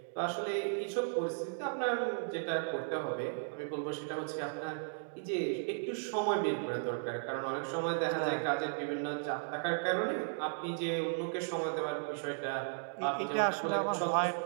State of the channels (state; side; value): silent; left; digital silence